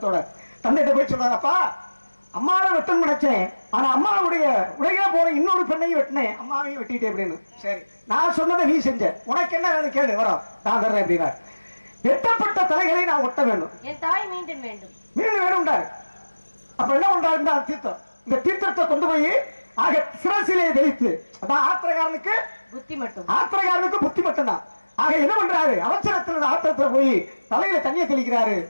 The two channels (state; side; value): inverted; both; correlation -1.00